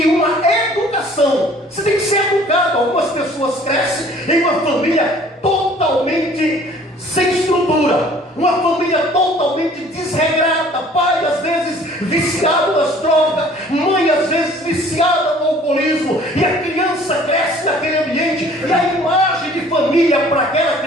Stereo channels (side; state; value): both; normal; correlation 0.53